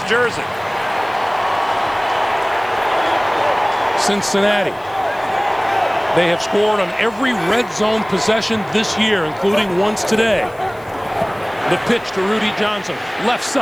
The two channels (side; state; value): left; noise; hiss, 28 dB below the sound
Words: jersey. Cincinnati. They have scored on every red zone possession this year, including once today. The pitch to Rudy Johnson, left